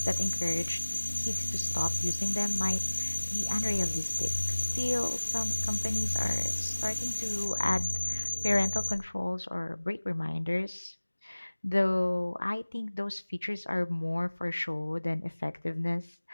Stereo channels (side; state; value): both; inverted; correlation -1.00